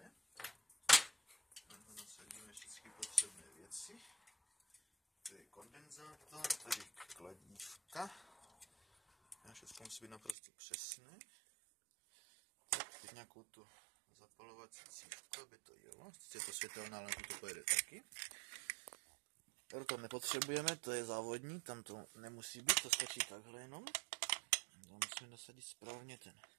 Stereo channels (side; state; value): left; drops out; at 10.4 s